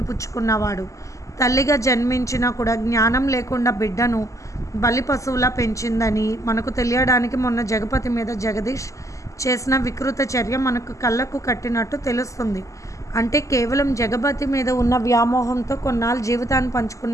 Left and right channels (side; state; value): right; late; 0.16 ms